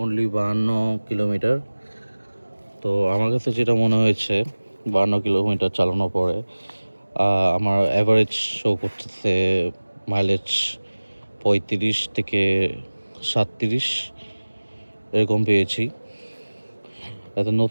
অনলি 52 কিলোমিটার। তো আমার কাছে যেটা মনে হয়েছে 52 কিলোমিটার চালানোর পরে আমার অ্যাভারেজ শো করতেছে মাইলেজ 35 থেকে 37 এরকম পেয়েছি। এত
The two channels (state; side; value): inverted; both; correlation -1.00